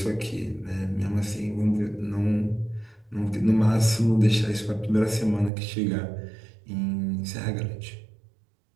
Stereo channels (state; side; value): drops out; left; at 5.5 s